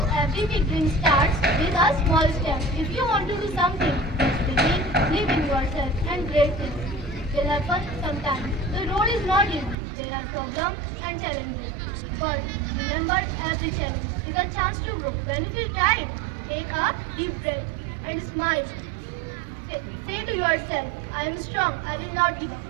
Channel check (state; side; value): drops out; left; at 9.8 s